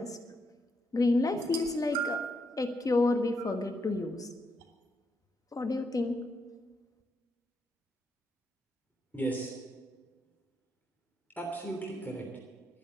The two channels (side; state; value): both; normal; correlation 0.80